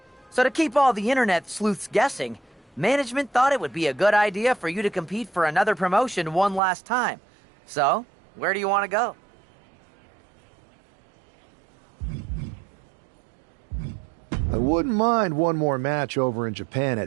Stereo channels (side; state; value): left; drops out; at 6.6 s